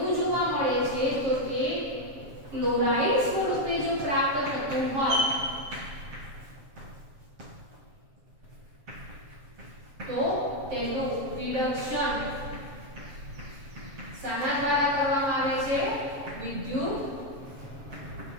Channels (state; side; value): late; left; 7.4 ms